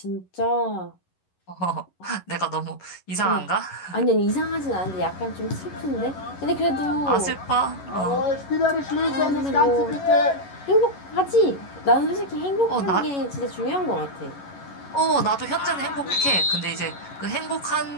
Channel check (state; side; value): late; right; 11 ms